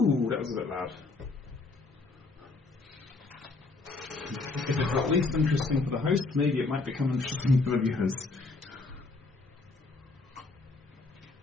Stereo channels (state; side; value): quieter; right; 3.6 dB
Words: that was a bit loud. If it's at least interesting for the host, maybe it might become interesting for the viewers.